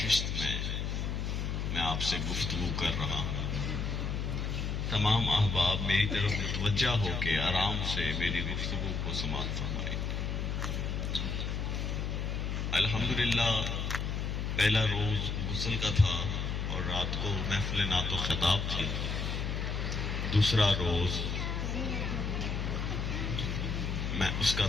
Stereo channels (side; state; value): left; noise; hum, 1 dB below the sound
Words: میں آپ سے گفتگو کر رہا ہوں۔ تمام احباب میری طرف متوجہ ہو کے آرام سے میری گفتگو کو سماعت فرمائیں۔ الحمدللہ پہلا روز غسل کا تھا اور رات کو محفل نعت و خطاب تھی۔ دوسرا روز میں اس کا